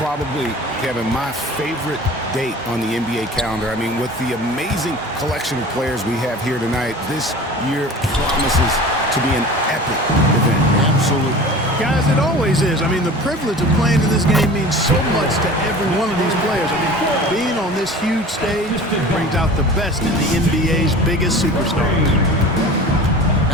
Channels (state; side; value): normal; both; correlation 0.39